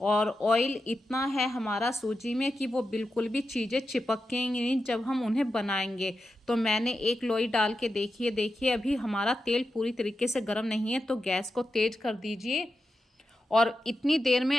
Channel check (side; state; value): both; normal; correlation 0.89